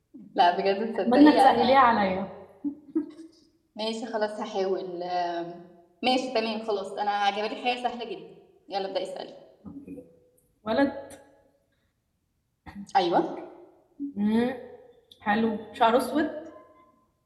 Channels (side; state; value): both; identical; correlation 1.00